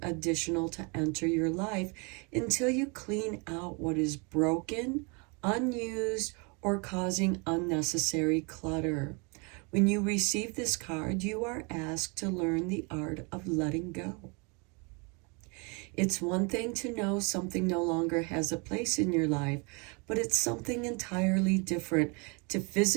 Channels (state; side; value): quieter; left; 31.8 dB